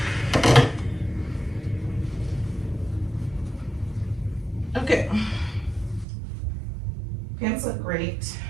Okay. Pants look great.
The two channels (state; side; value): drops out; left; at 6.1 s